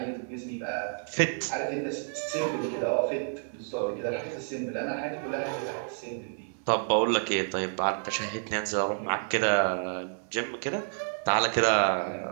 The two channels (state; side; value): silent; left; 58 dB below the other